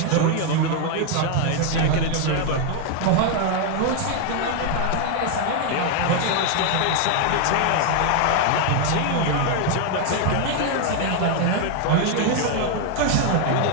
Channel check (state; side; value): different; both; correlation 0.01